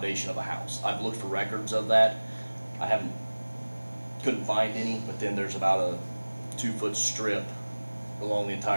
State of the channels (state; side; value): inverted; both; correlation -1.00